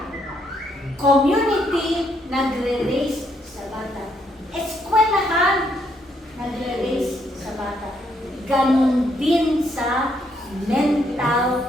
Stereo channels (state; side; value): normal; both; correlation 0.73